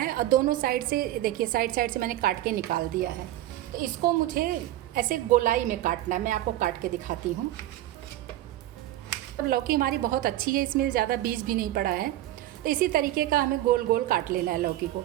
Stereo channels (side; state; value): left; quieter; 14.4 dB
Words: और दोनों साइड से देखिए साइड से मैंने काट के निकाल दिया है। तो इसको मुझे ऐसे गोलाई में काटना है, मैं आपको काट के दिखाती हूँ। और लौकी हमारी बहुत अच्छी है, इसमें ज़्यादा बीज भी नहीं पड़ा है। तो इसी तरीके का हमें गोल गोल काट लेना है लौकी को।